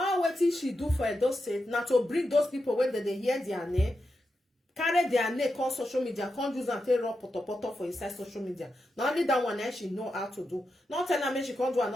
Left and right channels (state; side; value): normal; both; correlation 0.88